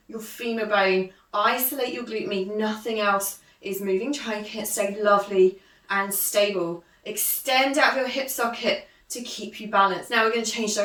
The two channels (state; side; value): identical; both; correlation 1.00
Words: your femur bone. Isolate your glute med. Nothing else is moving. Try and stay lovely and stable. Extend out your hip socket to keep you balanced. Now we're going to change